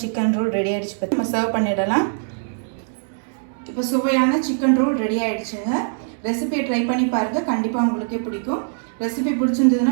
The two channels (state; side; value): silent; left; 64 dB below the other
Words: சிக்கன் ரோல் ரெடி ஆகிடுச்சு. பற்றி நம்ம சர்வ் பண்ணிடலாம். இப்போ சுவையான சிக்கன் ரோல் ரெடி ஆகிடுச்சுங்க. ரெசிபியை ட்ரை பண்ணி பாருங்கள். கண்டிப்பாக உங்களுக்கே பிடிக்கும். ரெசிபி